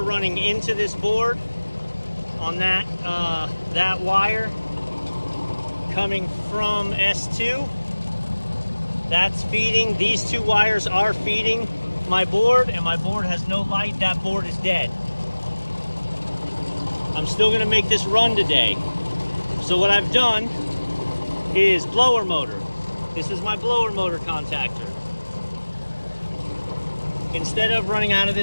running into this board on that that wire coming from S2. That's feeding, these two wires are feeding my board, and my board has no light. That board is dead. I'm still gonna make this run today. So what I've done is blower motor. This is my blower motor contactor. Instead of running out of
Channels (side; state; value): both; inverted; correlation -1.00